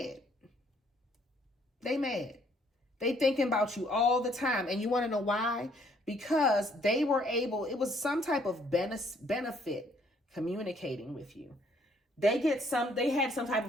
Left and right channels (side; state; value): both; normal; correlation 0.65